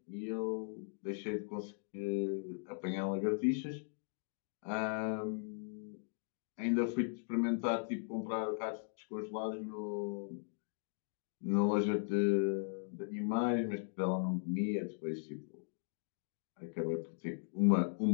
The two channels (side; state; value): right; silent; digital silence